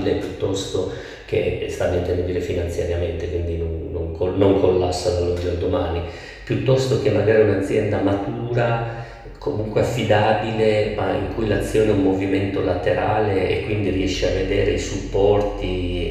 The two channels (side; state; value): both; identical; correlation 1.00